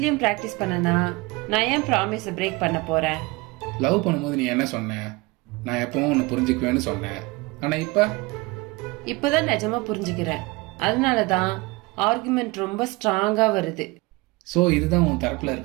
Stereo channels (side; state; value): left; quieter; 24.2 dB